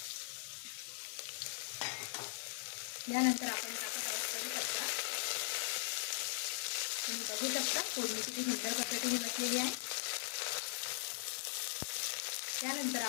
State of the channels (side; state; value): right; silent; 51 dB below the other